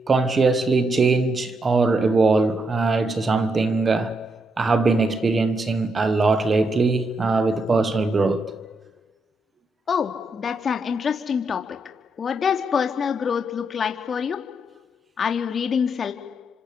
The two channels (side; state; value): both; normal; correlation 0.80